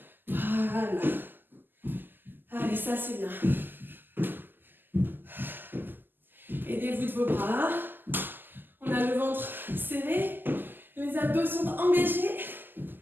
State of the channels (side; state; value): left; late; 0.092 ms